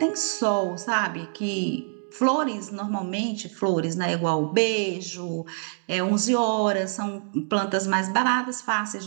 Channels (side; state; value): left; silent; digital silence